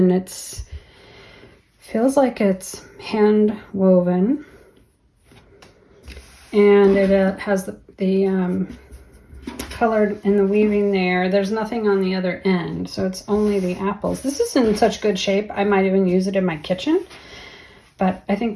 Feels like it's hand woven, and it has the colored in the weaving there. There's nothing on the other end, so it's only the apples. This is in such good shape, I might even use it in my kitchen, but I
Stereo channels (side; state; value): both; identical; correlation 1.00